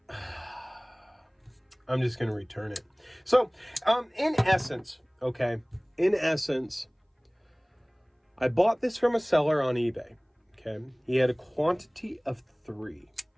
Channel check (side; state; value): both; identical; correlation 1.00